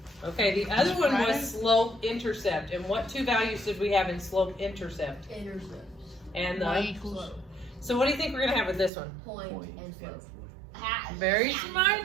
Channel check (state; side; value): drops out; left; at 8.9 s